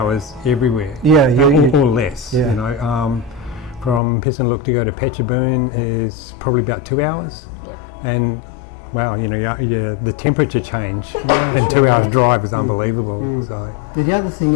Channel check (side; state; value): right; drops out; at 4.0 s